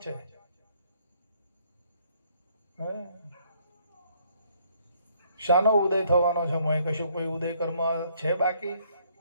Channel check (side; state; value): both; inverted; correlation -0.66